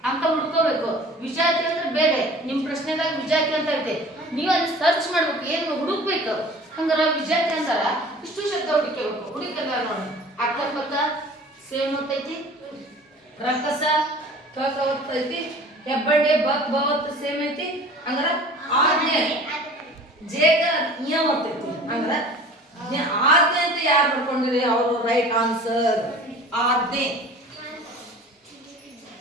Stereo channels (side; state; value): both; normal; correlation 0.44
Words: ಅಂತ ಹುಡ್ಕೋಬೇಕು. ವಿಜಾತಿ ಅಂದ್ರೆ ಬೇರೆ. ನಿಮ್ ಪ್ರಶ್ನೆದಾಗ ವಿಜಾತಿ ಅಂತ ಐತೆ, ನೀವು ಅಲ್ಲಿ ಸರ್ಚ್ ಮಾಡ್ಬೇಕು, ಏನ್ ಹುಡುಕ್ಬೇಕು. ಹಂಗಾರ ವಿಜಾತಿ ಅಂತಾರ ಇಷ್ಟು ಶಬ್ದ ಹುಡುಕಬೇಕು. ಹುಡುಕಲ್ಲ ನೋಡಿ. ಅಕ್ಕಪಕ್ಕ ಸೇಮ್ ಒತ್ತೈತಿ, ರಕ್ಕಸ ಕ ಒತ್ತೈತಿ, ಹೆಬ್ಬಡ್ಡೆ ಬಕ್ ಬವತ್ತು ಸೇಮ್ ಐತಿ. ಹಂಗಾರ ಆಜ್ಞೆ ಜೇಗ ಇಯ ಒತ್ತೈತಿ. ಹಂಗಾರ ಆಜ್ಞೆ ಅಂತ ಯಾರು ಬರ್ಕೊಂಡಿರಿ ಅವರು ರೈಟ್ ಆನ್ಸರ್. ಆಜ್ಞೆ